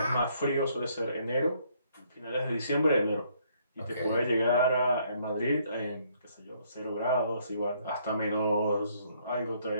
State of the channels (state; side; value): inverted; both; correlation -0.67